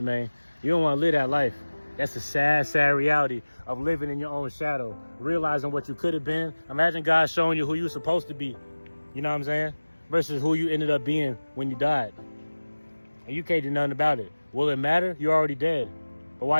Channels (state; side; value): inverted; both; correlation -1.00